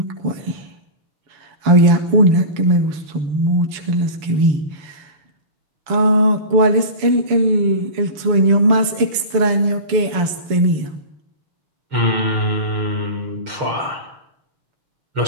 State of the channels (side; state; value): left; late; 6.9 ms